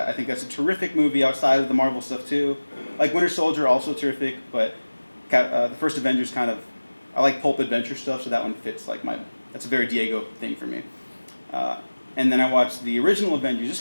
think that's a terrific movie outside of the Marvel stuff, too. Like Winter Soldier, also terrific, but the first Avengers kind of, I like pulp adventure stuff, so that one fits like that's a very Diego thing for me. And then I watched the original Avengers, just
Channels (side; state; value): both; inverted; correlation -1.00